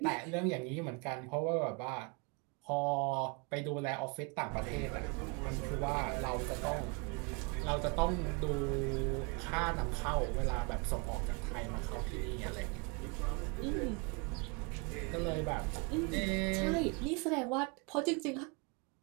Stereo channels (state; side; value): quieter; left; 31.9 dB